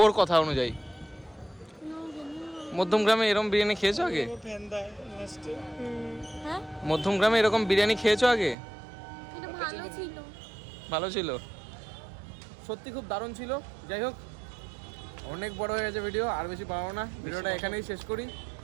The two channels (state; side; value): drops out; left; at 8.6 s